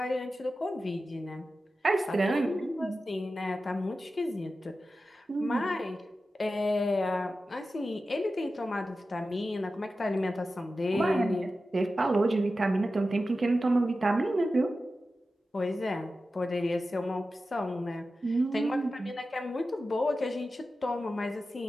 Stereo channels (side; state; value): both; normal; correlation 0.93